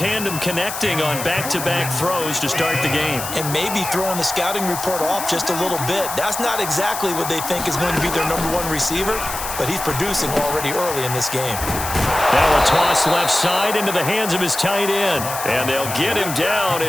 connecting on back-to-back throws to start the game. And maybe throwing the scouting report off just a little bit. That's not exactly what they think is going to be their #1 receiver, but he's producing already early in this game. Now a toss left side into the hands of his tight end. And they'll get him down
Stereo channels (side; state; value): left; noise; hiss, 7 dB below the sound